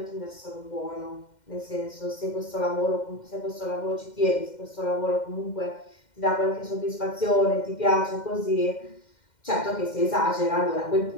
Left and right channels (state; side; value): late; right; 2.1 ms